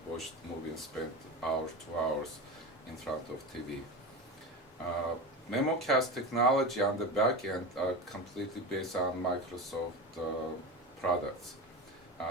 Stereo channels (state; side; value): normal; both; correlation 0.25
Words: watch the movie and spend 2 hours in front of TV. Memocast technology on the back end are completely based on Microsoft products.